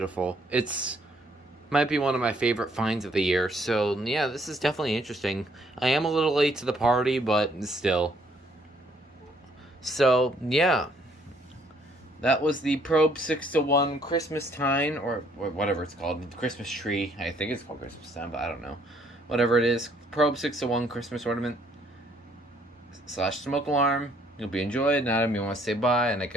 It's might be one of my favorite finds of the year. So yeah, this is definitely interesting. I am a little late to the party, but still. So yeah, that was the Probe 6-to-1 Christmas Time, or whatever it's called, Christmas tree. I think it's called Christmas Time, but I don't know. Whatever it is, Probe 6-to-1 Christmas ornament / smoke alarm. You'll be enjoyed. Now, you want to say bye, and I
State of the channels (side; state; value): both; normal; correlation 0.66